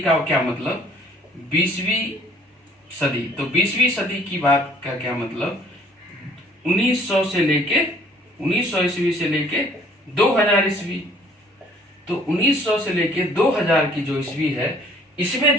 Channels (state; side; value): normal; both; correlation 0.58